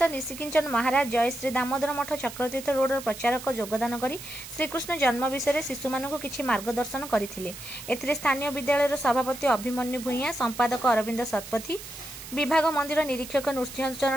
निशिकिंचन महाराज जय श्री दामोदर मठ चक्रतीर्थ रोड प्रचारक योगदान करी श्रीकृष्ण जन्म विषय शिशु मानक किछि मार्गदर्शन करथिले। एथिरे स्थानीय विद्यालयर सभापति अभिमन्यु भूइया, संपादक अरविंद शतपथी, विभाग मंदिर निरीक्षक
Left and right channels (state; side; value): noise; right; hiss, 13 dB below the sound